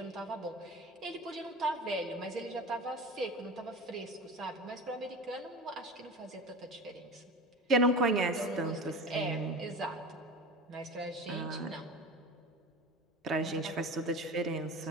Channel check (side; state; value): both; normal; correlation 0.32